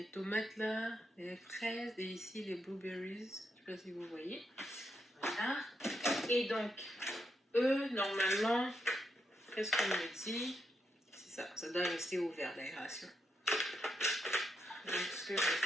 tomates là, les fraises et ici les blueberries. Je sais pas si vous voyez. Voilà. Et donc, eux, normalement, qu'est-ce qu'on me dit? C'est ça, ça doit rester ouvert l'aération. Donc ce que je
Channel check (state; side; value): normal; both; correlation 0.82